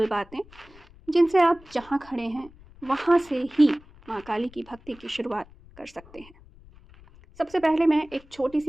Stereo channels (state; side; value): noise; left; rumble, 24 dB below the sound